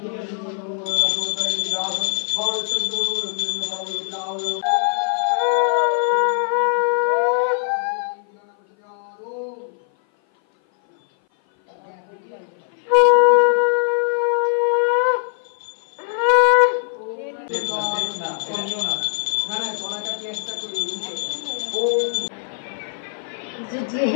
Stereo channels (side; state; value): right; silent; 56 dB below the other